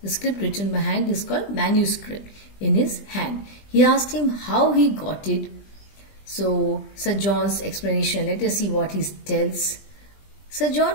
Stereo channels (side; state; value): right; late; 20 ms